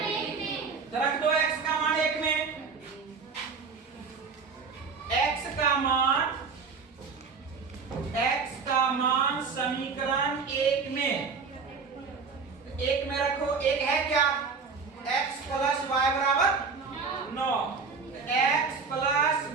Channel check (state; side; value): quieter; left; 5.1 dB